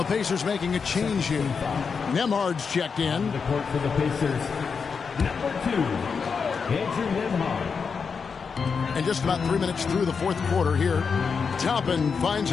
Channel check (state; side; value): quieter; right; 5.7 dB